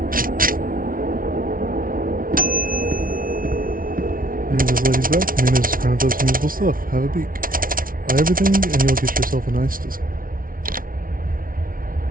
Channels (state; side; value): late; left; 0.41 ms